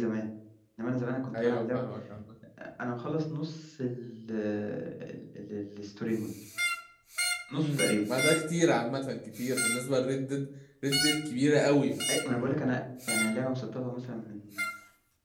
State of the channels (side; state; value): both; identical; correlation 1.00